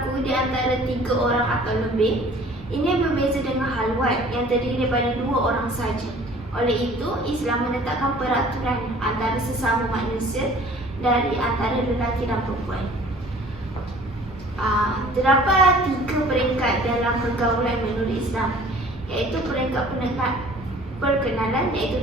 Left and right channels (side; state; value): both; normal; correlation 0.50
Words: di antara 3 orang atau lebih. Ini berbeza dengan halwat yang terdiri daripada 2 orang saja. Oleh itu, Islam menetapkan peraturan antara sesama manusia dari antara lelaki dan perempuan. Terdapat 3 peringkat dalam pergaulan menurut Islam, iaitu peringkat perkenalan, iaitu